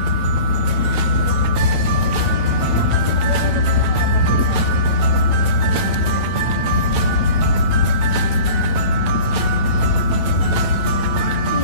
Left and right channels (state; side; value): late; left; 8.9 ms